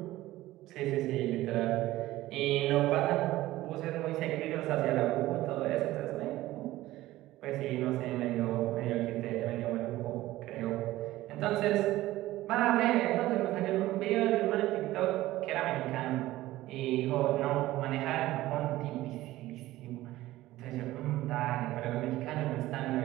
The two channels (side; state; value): left; quieter; 16.5 dB